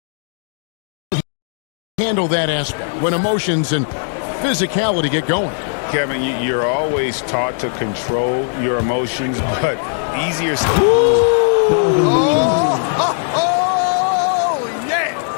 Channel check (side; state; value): right; silent; digital silence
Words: handle that aspect when emotions and physicality get going. Kevin, you're always taught to control your emotions, but easier.